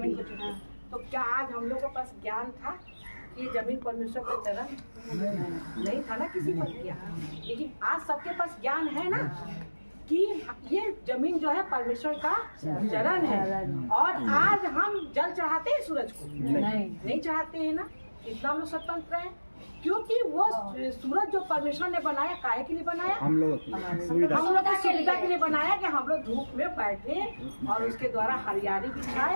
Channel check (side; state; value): both; inverted; correlation -1.00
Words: को छूते हैं। तो क्या आज हम लोग के पास ज्ञान था कि ये जमीन परमेश्वर का चरण नहीं था ना, किसी पर किया, लेकिन आज सबके पास ज्ञान है ना कि ये जमीन जो है परमेश्वर का चरण है। और आज हम जल चढ़ाते हैं सूरज को, नहीं चढ़ाते हैं ना। इतना हम लोग स्वतंत्र हैं क्योंकि वो सूरज जो परमेश्वर ने बनाया, काहे के लिए बनाया, हम लोग की सुविधा के लिए बनाया कि हम लोग धूप में बैठे और उसके द्वारा हरियाली भी